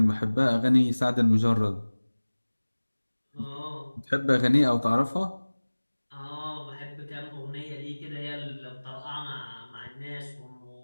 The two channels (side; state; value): both; inverted; correlation -1.00